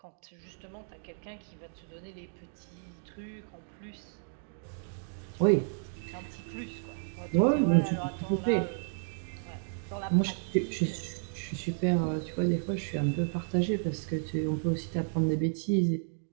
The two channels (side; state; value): left; silent; digital silence